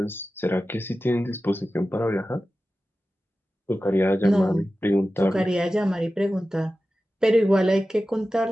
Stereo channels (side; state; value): both; normal; correlation 0.94